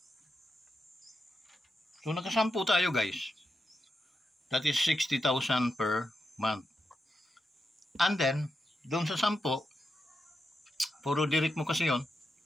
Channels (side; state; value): both; normal; correlation 0.86